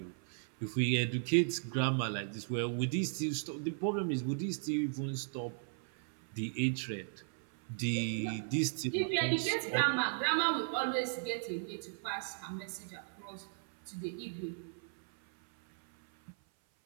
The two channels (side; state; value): left; silent; 54 dB below the other